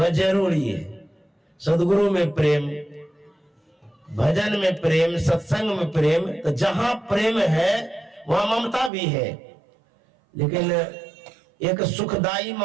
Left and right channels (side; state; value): left; drops out; at 8.9 s